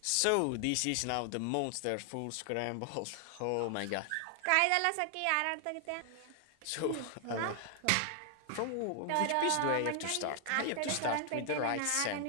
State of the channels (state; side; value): different; both; correlation 0.00